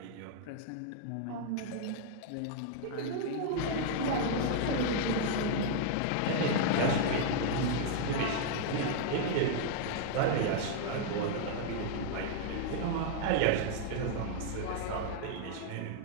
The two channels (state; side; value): different; both; correlation 0.00